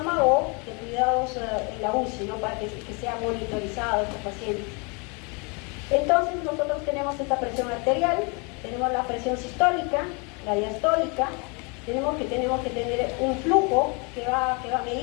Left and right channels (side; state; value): right; quieter; 32.4 dB